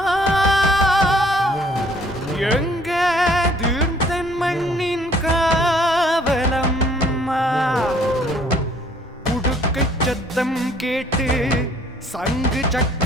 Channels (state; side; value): normal; both; correlation 0.60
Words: எங்க தீர்த்தன் மண்ணின் காவலம்மா உடுக்கை சத்தம் கேட்டு சங்கு